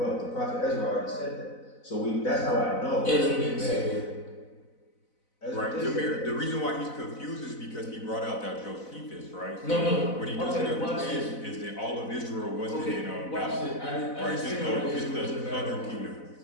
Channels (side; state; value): right; late; 4.0 ms